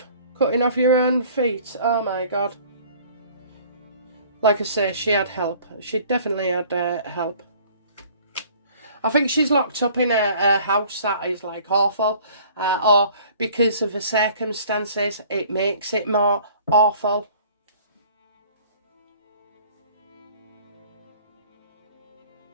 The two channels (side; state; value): both; inverted; correlation -0.52